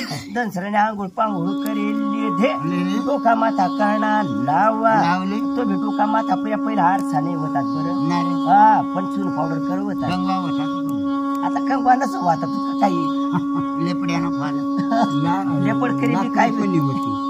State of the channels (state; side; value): identical; both; correlation 1.00